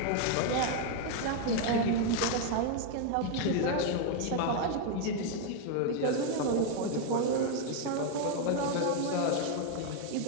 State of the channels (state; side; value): different; both; correlation 0.00